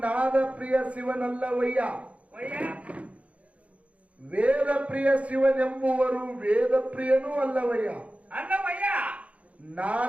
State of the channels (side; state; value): left; late; 0.065 ms